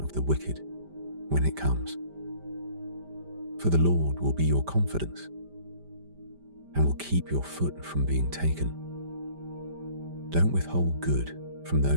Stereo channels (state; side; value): late; left; 5.1 ms